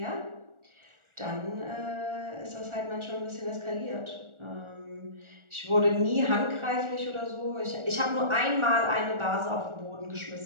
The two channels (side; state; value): left; late; 1.4 ms